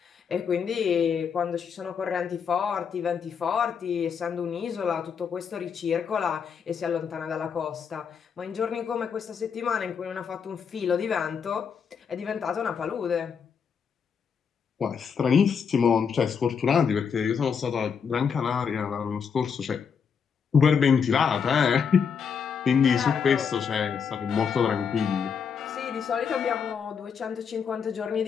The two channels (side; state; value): right; quieter; 6.6 dB